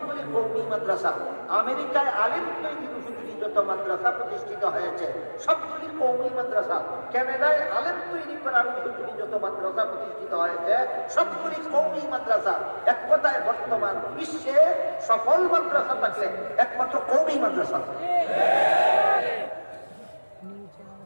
কওমি মাদ্রাসা। আমেরিকায় আলেম তৈরির উপযোগী যত মাদ্রাসা প্রতিষ্ঠিত হয়েছে সবগুলি কওমি মাদ্রাসা। কানাডায় আলেম তৈরি করার উপযোগী যত মাদ্রাসা প্রতিষ্ঠিত হয়েছে সবগুলি কওমি মাদ্রাসা। এক কথায় বর্তমান বিশ্বে সফল মাদ্রাসা থাকলে একমাত্র কওমি মাদ্রাসা।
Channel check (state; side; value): inverted; both; correlation -1.00